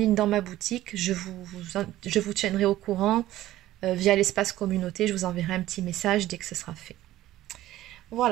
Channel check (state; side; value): quieter; left; 14.9 dB